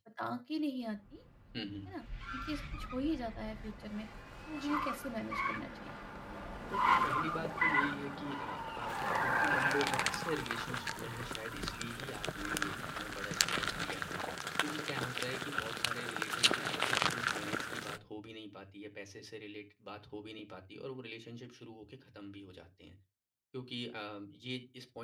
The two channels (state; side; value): identical; both; correlation 1.00